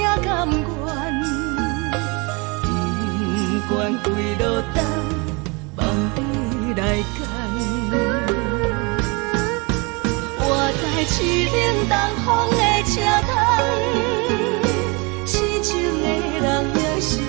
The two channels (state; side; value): quieter; left; 29.2 dB